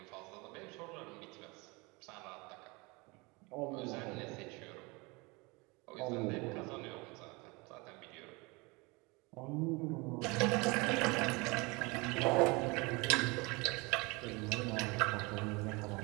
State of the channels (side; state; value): left; quieter; 26.5 dB